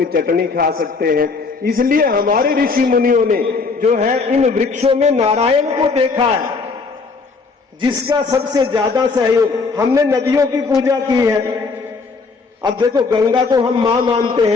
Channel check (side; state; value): right; quieter; 4.4 dB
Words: चटनी खा सकते हैं। इसलिए हमारे ऋषि मुनियों ने जो है इन वृक्षों में नारायण को देखा है, जिसका सबसे ज्यादा सहयोग। हमने नदियों की पूजा की है। अब देखो, गंगा को हम मां मानते